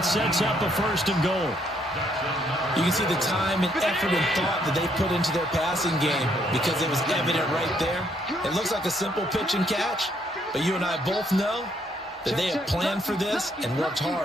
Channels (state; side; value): normal; both; correlation 0.70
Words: sets up a 1st and goal. You can see the time and effort and thought that they put into their passing game because it was evident right there. It looks like a simple pitch and catch, but you and I both know that they have planned for this and worked